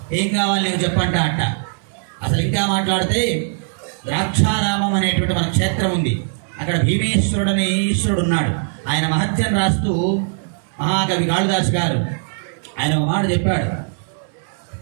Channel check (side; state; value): left; silent; digital silence